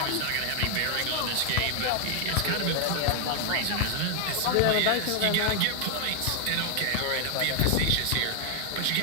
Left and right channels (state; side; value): different; both; correlation 0.00